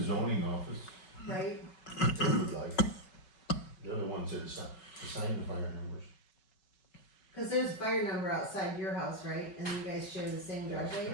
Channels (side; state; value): right; late; 5.3 ms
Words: zoning office, right? If you would like. they're the ones that assign the fire numbers. Cause there's a fire number outside your house, right, and you guys share the same There's, driveway?